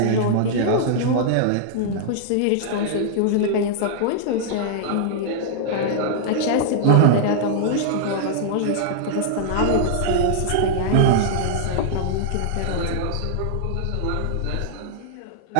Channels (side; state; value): both; different; correlation -0.02